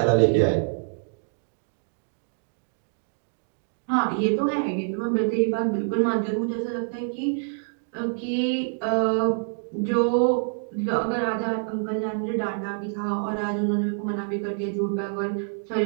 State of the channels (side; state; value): left; silent; digital silence